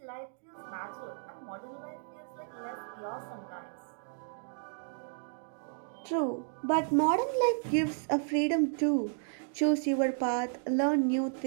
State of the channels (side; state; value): left; silent; digital silence